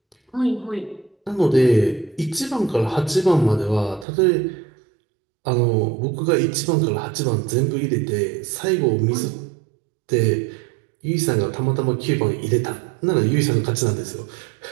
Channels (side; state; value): left; drops out; at 4.0 s